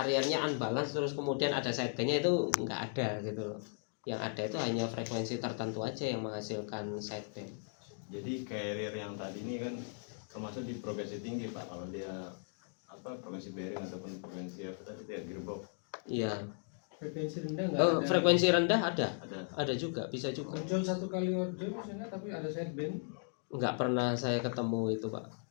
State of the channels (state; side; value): silent; right; 53 dB below the other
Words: unbalance terus kemudian ada sidebandnya, itu nggak ada gitu loh. Yang ada itu hanya frekuensi tertentu aja yang menghasilkan sideband. Jadi carrier yang tadi ini kan termasuk di frekuensi tinggi Pak, kalau dia frekuensi bearing ataupun frekuensi apa tadi ya gearbox. Iya. Frekuensi rendah nggak ada. Frekuensi rendah ada Ada juga, bisa juga. Ojol 1 kali ojol misalnya tapi ada sideband. Nggak pernah saya ketemu itu Pak.